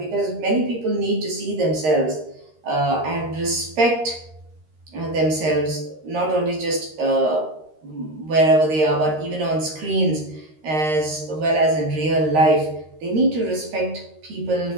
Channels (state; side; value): late; left; 13 ms